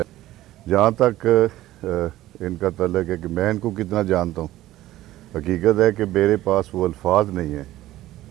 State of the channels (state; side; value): quieter; left; 15.3 dB